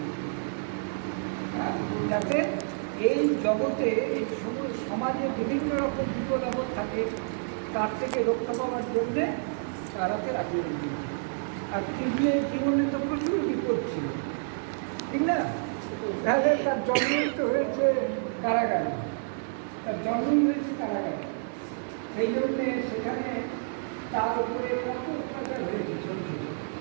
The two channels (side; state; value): left; silent; digital silence